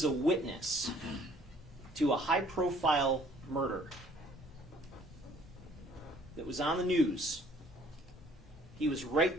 a witness to a high-profile murder that was on the news. He was right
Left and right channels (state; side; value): normal; both; correlation 0.58